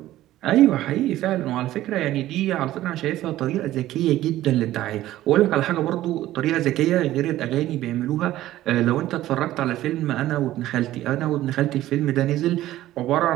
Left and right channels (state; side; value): quieter; left; 14.6 dB